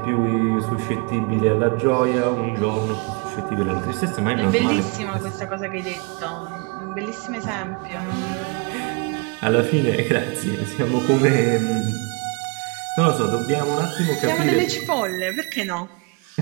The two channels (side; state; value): left; quieter; 31.0 dB